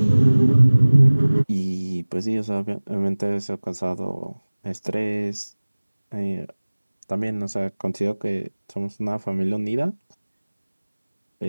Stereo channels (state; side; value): inverted; both; correlation -1.00